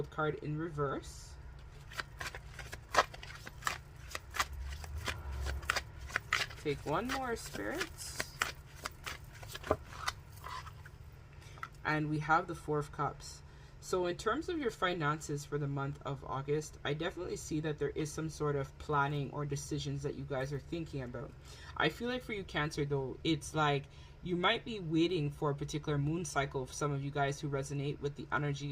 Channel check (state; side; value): identical; both; correlation 1.00